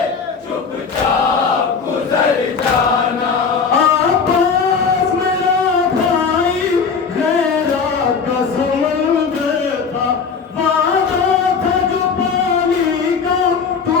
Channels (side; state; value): right; quieter; 5.6 dB